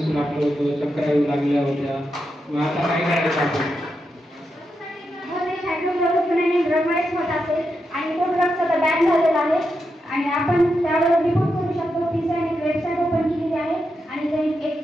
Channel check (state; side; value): normal; both; correlation 0.86